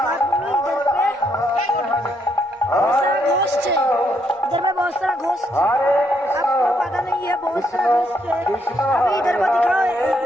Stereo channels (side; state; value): both; normal; correlation 0.74